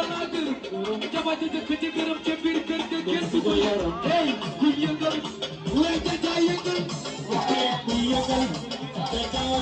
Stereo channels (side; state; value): both; identical; correlation 1.00